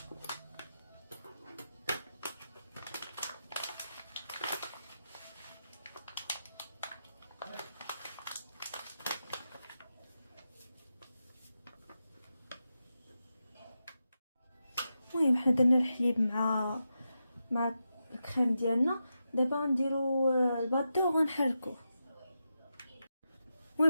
المهم حنا درنا الحليب مع الكريم ديالنا. دابا غنديرو الباطو وغنحركوه.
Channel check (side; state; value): both; inverted; correlation -0.88